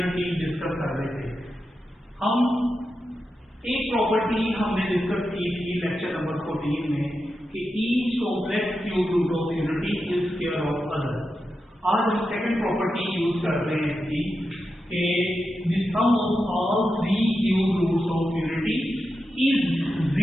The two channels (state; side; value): normal; both; correlation 0.89